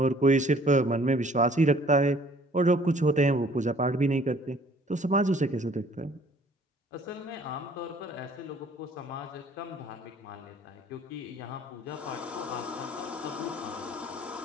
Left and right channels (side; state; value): both; normal; correlation 0.56